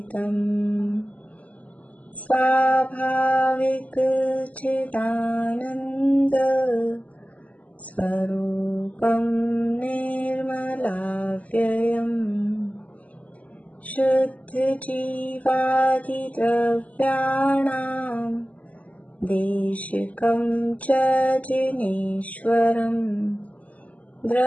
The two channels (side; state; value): right; late; 0.071 ms